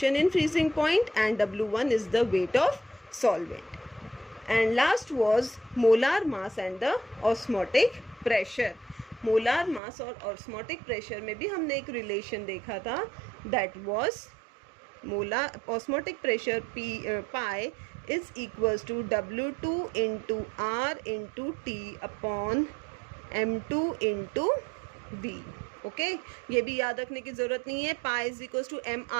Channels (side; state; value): left; drops out; at 9.8 s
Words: in freezing point, and W1 is the weight of solvent. And last was molar mass and the osmotic pressure. molar mass और osmotic pressure में भी हमने एक relation देखा था, that was molar osmotic pressure pi is equals to W2 into R into T upon M2 into V। Okay, ये भी याद रखने की जरूरत नहीं है। Pi is equals to